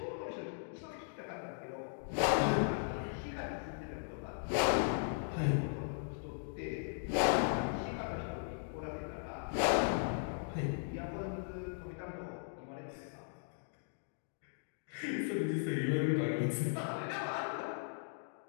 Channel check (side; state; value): right; silent; digital silence